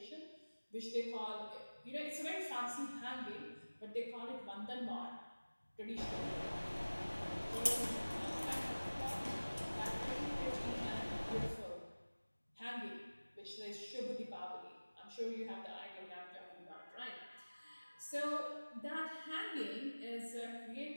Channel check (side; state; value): both; inverted; correlation -1.00